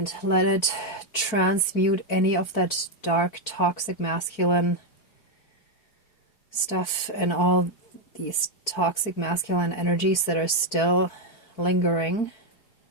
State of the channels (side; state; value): right; late; 4.9 ms